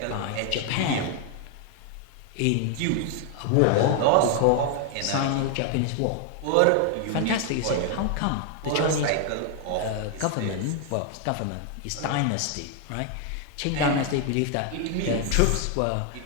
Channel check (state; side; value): different; both; correlation 0.00